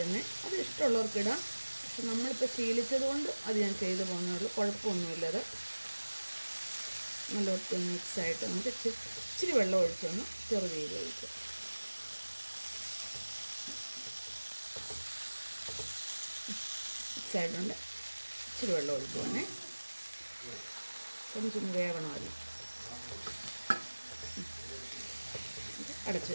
അത് ഇഷ്ടമുള്ളവർക്ക് ഇടാം. പക്ഷെ നമ്മളിപ്പോൾ ശീലിച്ചത് കൊണ്ട് അത് ഞാൻ ചെയ്തു പോകുന്നുള്ളൂ. കുഴപ്പമൊന്നുമില്ലത്. നല്ല ഒത്തിരി മിക്സായിട്ട് നമുക്ക് ഇച്ചിരി വെള്ളം ഒഴിച്ചൊന്ന് ചെറുതീയിൽ ഒഴിക്കുക. മിക്സായിട്ടുണ്ട്. ഇച്ചിരി വെള്ളം ഒഴിക്കുവാണേ, കൊഞ്ചൊന്ന് വേവണമല്ലോ. അടച്ചു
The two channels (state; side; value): inverted; both; correlation -1.00